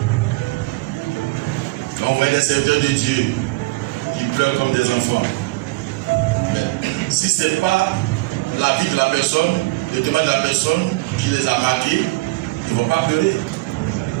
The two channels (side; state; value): left; quieter; 21.5 dB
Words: Quand on voit des serviteurs de Dieu qui pleurent comme des enfants. Mais si ce n'est pas la vie de la personne, le témoignage de la personne qui les a marqués, ils ne vont pas pleurer.